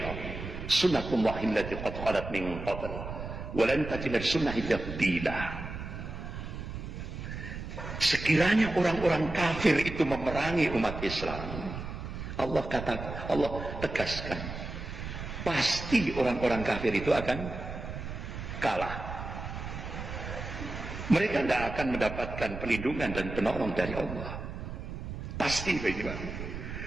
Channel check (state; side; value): noise; right; rumble, 8 dB below the sound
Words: Sunnatullahi allati qad khalat min qabl, wa lan tajida sunnati tabdila. sekiranya orang-orang kafir itu memerangi umat Islam, Allah tegaskan, pasti orang-orang kafir itu akan kalah. Mereka tidak akan mendapatkan perlindungan dan penolong dari Allah. Pasti begini, Pak.